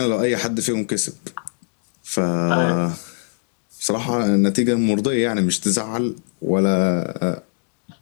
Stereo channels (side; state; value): right; silent; digital silence